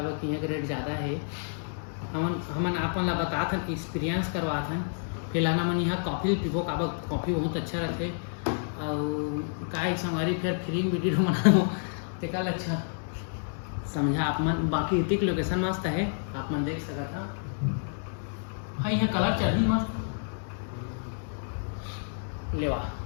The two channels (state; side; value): silent; right; digital silence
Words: कि यहाँ का रेट ज़्यादा है हमन अपन ला बता था एक्सपीरियंस करवा था फिलहाल हमन यहाँ कॉफ़ी पीबो काबा कॉफ़ी बहुत अच्छा रहते और का संगवारी फिर फ्री वीडियो बनाओ तो कल अच्छा समझा आप मन बाकी इतिक लोकेशन मस्त है आप मन देख सकता था हाँ यहाँ कलर चढ़ी मस्त लेवा